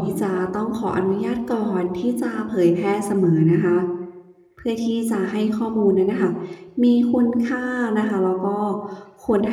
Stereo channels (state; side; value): identical; both; correlation 1.00